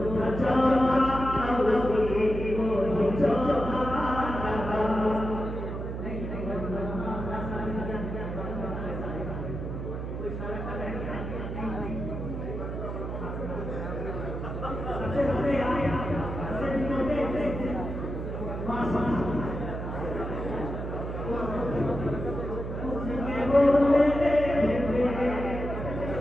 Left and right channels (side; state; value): right; noise; hum, 5 dB below the sound